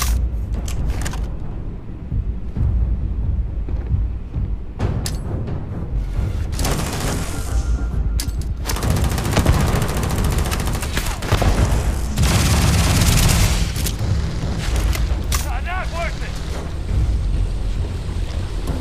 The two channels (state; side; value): identical; both; correlation 1.00